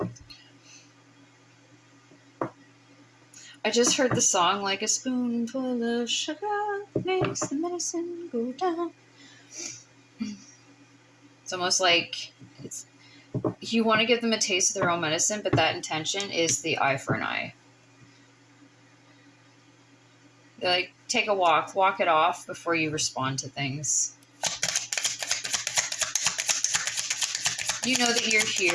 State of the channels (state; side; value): identical; both; correlation 1.00